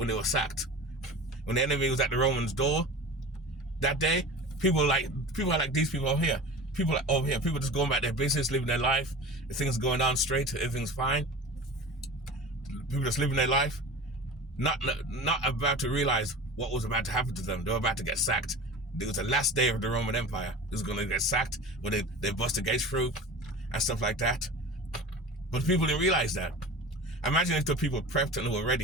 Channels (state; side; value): normal; both; correlation 0.36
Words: were sacked. When the enemy was at the Romans' door that day, people are like these people over here. People just going about their business, living their life. Things going down straight, everything's fine. People just living their life, not about to realize what was about to happen to them. They were about to get sacked. It was the last day of the Roman Empire. It was going to get sacked when they bust the gates through and stuff like that. But people didn't realize that. Imagine if the people prepped and were